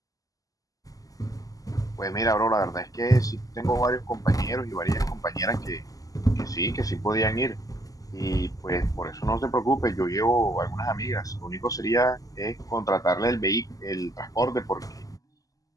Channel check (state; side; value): late; right; 0.17 ms